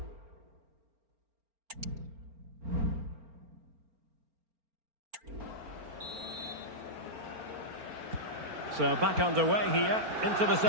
So back underway here into the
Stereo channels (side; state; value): left; late; 4.4 ms